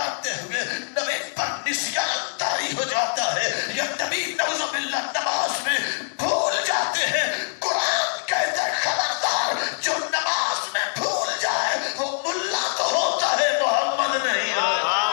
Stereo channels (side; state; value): right; silent; digital silence